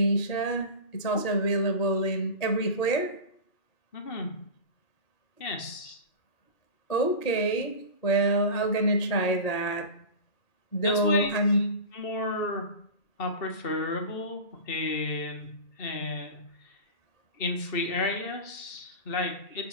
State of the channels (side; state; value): right; late; 2.7 ms